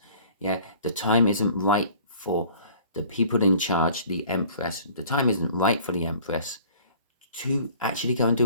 yeah, the time isn't right for the people in charge, the Empress. The time isn't right for the Empress to actually go and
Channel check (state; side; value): inverted; both; correlation -0.50